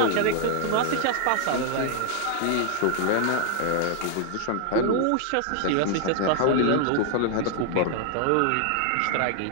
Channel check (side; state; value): both; different; correlation 0.00